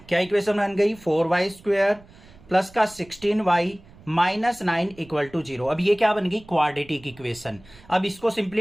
क्या इक्वेशन बन गई, 4y² प्लस का 16y माइनस 9 = 0। अब ये क्या बन गई, क्वाड्रेटिक इक्वेशन। अब इसको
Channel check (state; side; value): noise; right; rumble, 24 dB below the sound